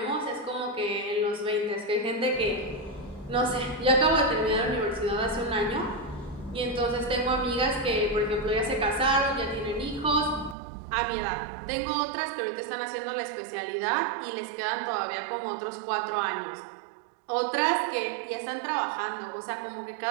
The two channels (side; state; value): left; drops out; at 10.6 s